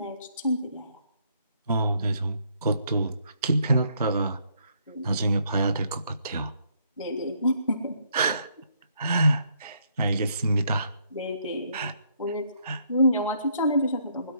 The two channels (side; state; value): both; inverted; correlation -0.70